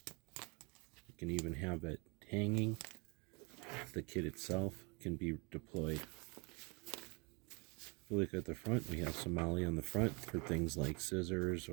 you can even have it hanging. The kit itself can be deployed. If you look at the front, we have some MOLLE on the front for things like scissors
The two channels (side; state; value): left; quieter; 30.1 dB